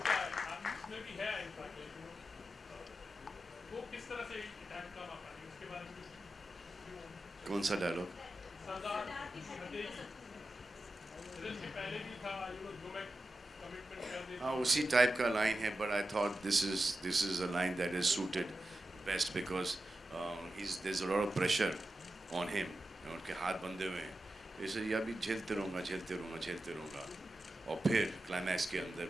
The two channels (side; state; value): both; normal; correlation 0.91